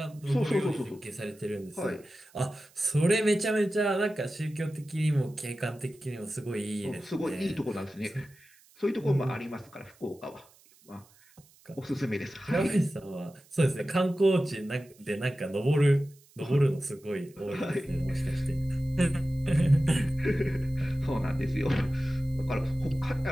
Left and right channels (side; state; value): right; noise; hiss, 28 dB below the sound